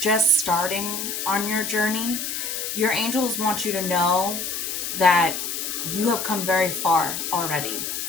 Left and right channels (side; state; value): left; noise; hiss, 4 dB below the sound